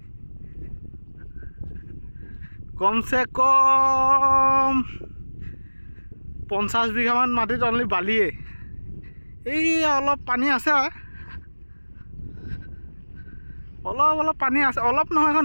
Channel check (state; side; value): inverted; both; correlation -1.00